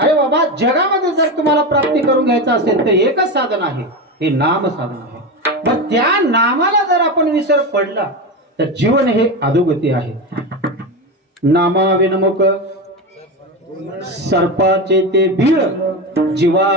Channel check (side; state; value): both; normal; correlation 0.19